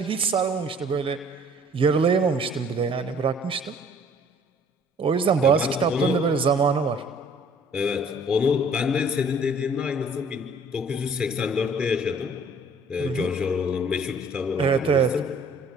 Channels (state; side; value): normal; both; correlation 0.55